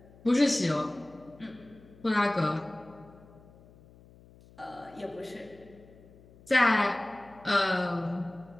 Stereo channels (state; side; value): noise; left; hum, 24 dB below the sound